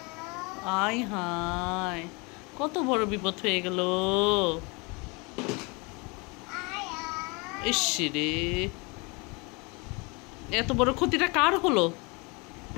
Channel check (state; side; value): quieter; right; 28.5 dB